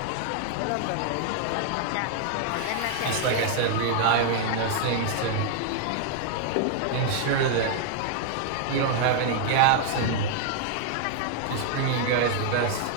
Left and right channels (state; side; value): different; both; correlation 0.00